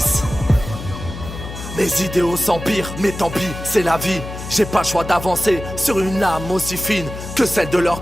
Mes idéaux s'empirent, mais tant pis, c'est la vie. J'ai pas le choix d'avancer sur une âme aussi fine que celle de leurs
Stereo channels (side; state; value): left; noise; hum, 10 dB below the sound